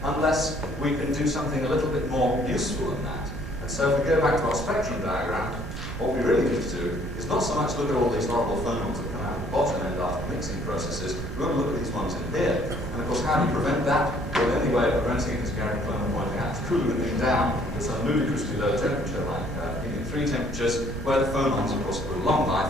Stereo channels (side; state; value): right; noise; rumble, 7 dB below the sound